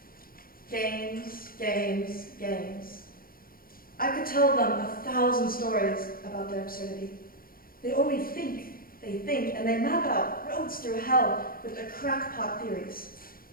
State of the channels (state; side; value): late; right; 0.42 ms